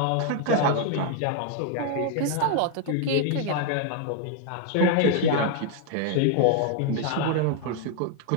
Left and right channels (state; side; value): different; both; correlation 0.00